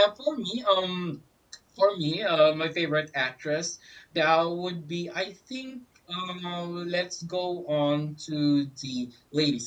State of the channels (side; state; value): both; identical; correlation 1.00